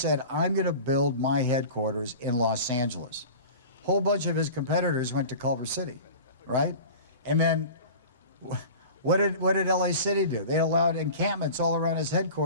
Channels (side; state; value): both; inverted; correlation -0.37